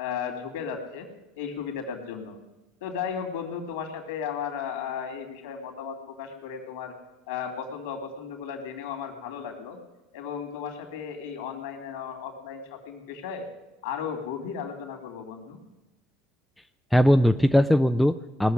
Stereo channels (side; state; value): both; normal; correlation 0.77